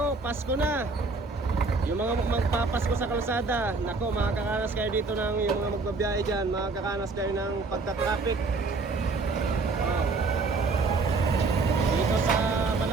Pasko na. Yung mga magpapasko sa kalsada, nako, makakaranas kayo dito ng yung mga magbabiyahe dyan, makakaranas kayo ng pagta-traffic. Oh. Dito sa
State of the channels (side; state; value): left; quieter; 3.8 dB